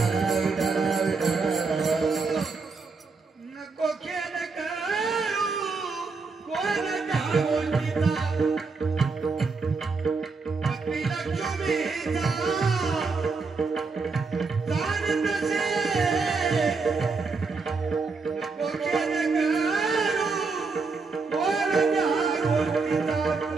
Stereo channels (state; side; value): quieter; left; 4.4 dB